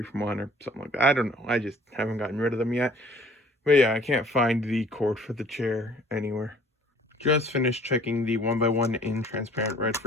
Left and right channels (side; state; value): both; normal; correlation 0.55